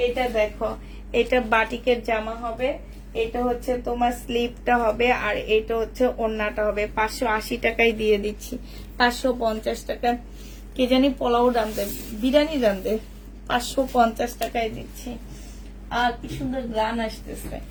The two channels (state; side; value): identical; both; correlation 1.00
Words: এটা দেখো, এটা বাটিকের জামা হবে, এটা হচ্ছে তোমার স্লিপটা হবে, আর এটা হচ্ছে ওড়নাটা হবে। 580 টাকায় দিয়ে দিচ্ছি। 550 টাকা কে জানি পোলাও রান্ধে, বিরিয়ানি রান্ধে, 550 টাকায় দিচ্ছি। আর কি সুন্দর গ্রান আসতেছে,